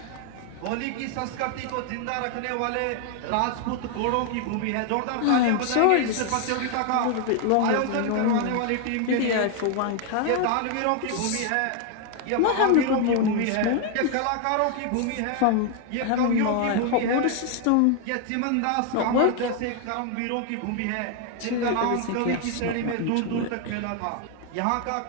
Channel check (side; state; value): both; different; correlation 0.00